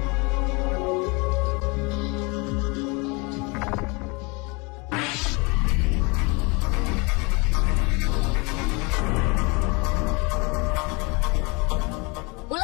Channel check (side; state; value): right; quieter; 28.8 dB